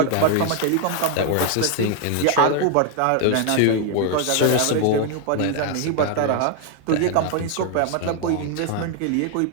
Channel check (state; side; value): different; both; correlation 0.00